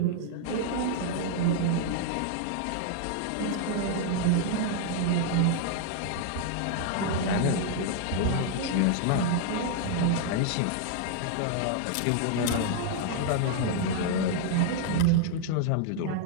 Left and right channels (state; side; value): different; both; correlation 0.00